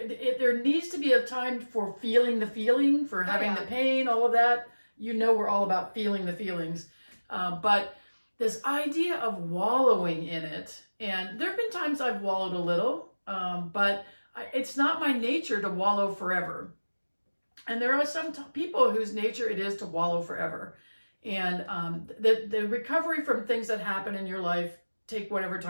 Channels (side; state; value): both; inverted; correlation -1.00